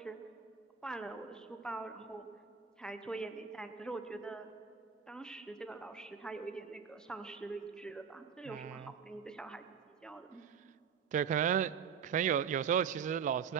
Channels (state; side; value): quieter; left; 7.1 dB